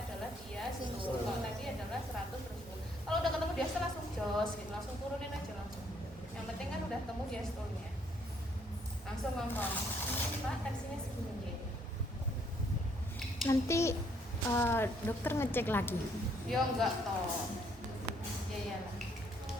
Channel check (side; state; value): both; normal; correlation 0.68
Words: adalah diastol. Kalau tadi adalah 100 terus. Kalau udah ketemu diastol langsung jos gitu, langsung turunin aja langsung. Yang penting kan udah ketemu diastolnya. Langsung ngomong, Pak tensinya segini. Nanti dokter ngecek lagi. Ya enggak toh. Ya iyalah.